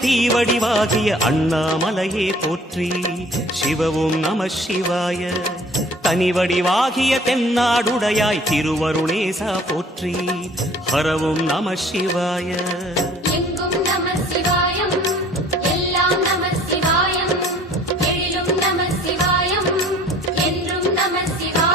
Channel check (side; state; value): both; normal; correlation 0.52